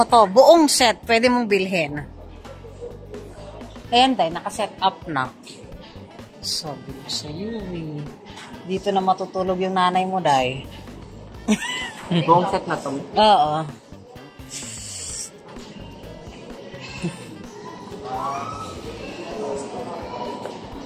to. Buong set. Pwede mong bilhin. Ayan, day. Naka-set up na. Sabi ko sa'yo, eh. Dito na matutulog yung nanay mo, day. Buong set na to? Oo.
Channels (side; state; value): both; identical; correlation 1.00